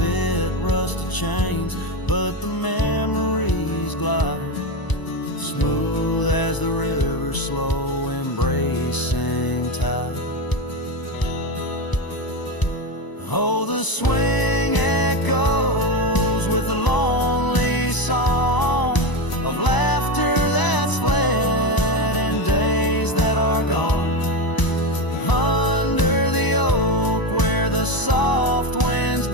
Rusted chains, but the memories glide smooth as the river's slow embracing tide. Oh, the swing echoes with the lonely song of laughter that's fled and days that are gone. Under the oak where the soft winds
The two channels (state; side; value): late; right; 1.0 ms